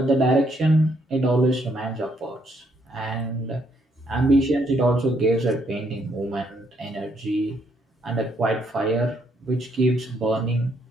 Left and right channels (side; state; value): both; normal; correlation 0.72